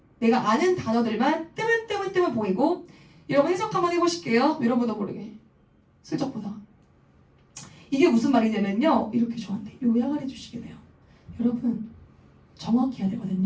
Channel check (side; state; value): both; identical; correlation 1.00